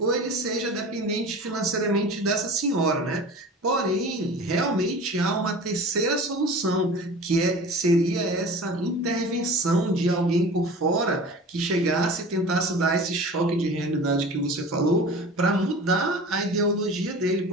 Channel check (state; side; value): normal; both; correlation 0.38